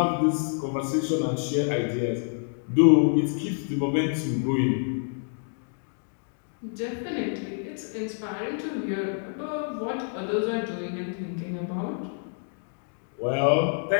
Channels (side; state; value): right; silent; 60 dB below the other